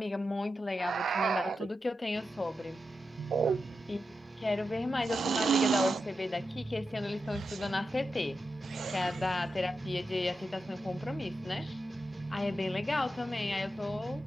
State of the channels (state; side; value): normal; both; correlation 0.89